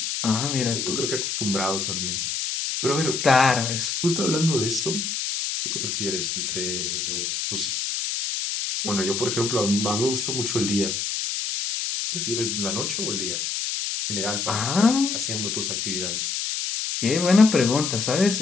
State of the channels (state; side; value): noise; left; hiss, 2 dB below the sound